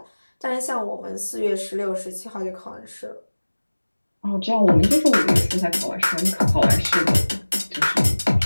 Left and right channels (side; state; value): both; inverted; correlation -1.00